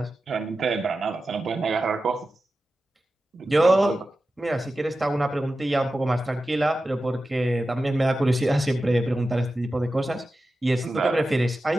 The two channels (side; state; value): both; normal; correlation 0.93